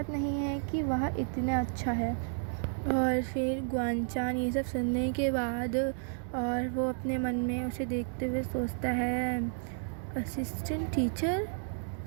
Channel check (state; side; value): silent; left; digital silence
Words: नहीं है कि वह इतना अच्छा है। और फिर ग्वानचान ये सब सुनने के बाद और वो अपने मन में उसे देखते हुए सोचता है, असिस्टेंट टीचर।